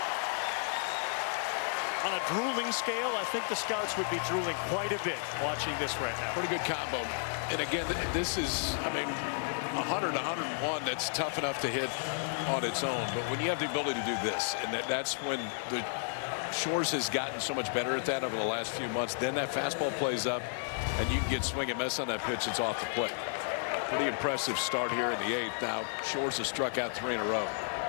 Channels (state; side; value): silent; right; 56 dB below the other